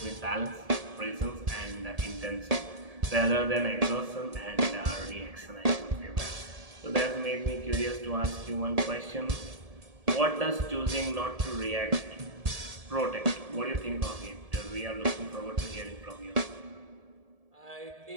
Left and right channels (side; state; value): left; late; 1.7 ms